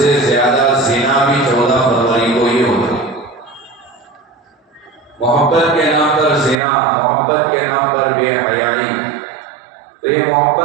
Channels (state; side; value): drops out; left; at 6.6 s